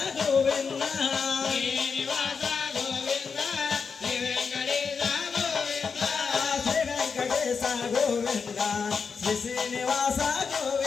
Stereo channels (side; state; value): right; quieter; 5.6 dB